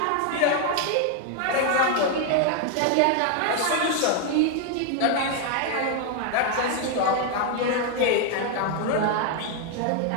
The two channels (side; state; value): both; different; correlation 0.00